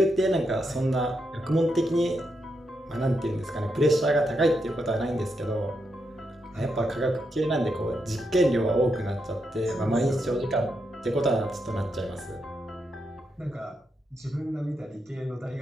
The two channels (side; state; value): both; normal; correlation 0.83